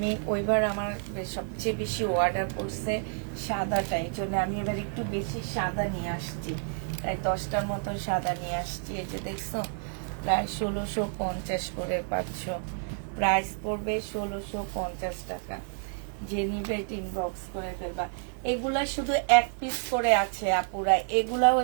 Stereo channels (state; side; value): silent; left; 58 dB below the other